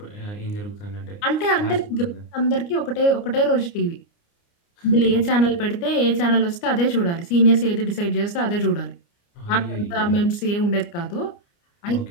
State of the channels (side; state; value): right; late; 29 ms